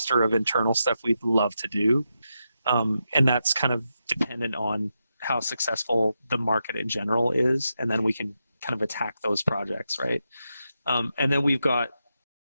of internal stuff we'd love to do. And that's kind of dependent on how successful the market in general is, and then we can kind of attack those projects, right? And then we've got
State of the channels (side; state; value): both; inverted; correlation -0.86